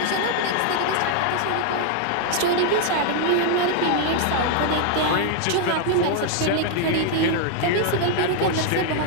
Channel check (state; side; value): different; both; correlation 0.00